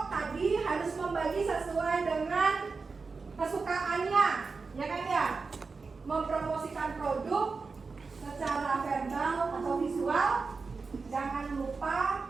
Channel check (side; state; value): left; quieter; 4.5 dB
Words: tadi harus membagi sesuai dengan kesukaannya, ya kan ya? Mempromosikan produk secara verbal atau visual, jangan lupa